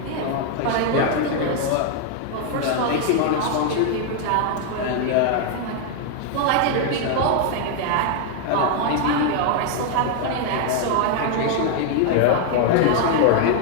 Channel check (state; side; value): different; both; correlation 0.00